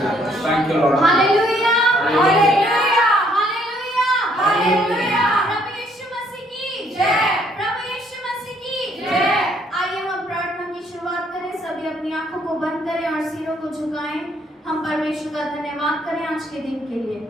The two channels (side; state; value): both; normal; correlation 0.66